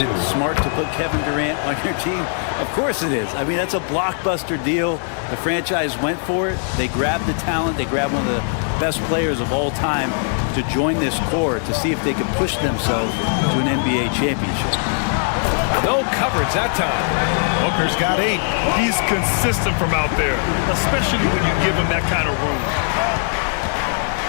smart to put Kevin Durant on your team? Of course it is. I mean, that's a blockbuster deal. The franchise went for it. They grabbed the talent. They grabbed one of the best players of all time to join this core to see if they could push themselves to an NBA championship. No coverage that time. Booker's got 8. He's consistent from out there, especially when you give him that kind of room.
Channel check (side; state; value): right; silent; 66 dB below the other